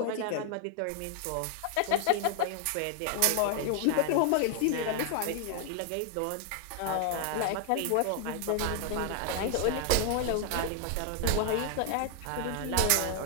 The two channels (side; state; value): both; different; correlation 0.00